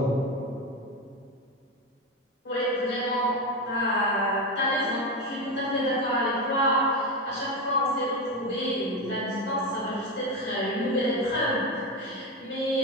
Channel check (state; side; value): normal; both; correlation 0.15